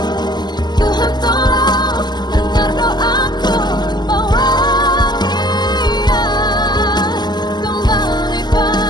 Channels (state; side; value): late; right; 0.21 ms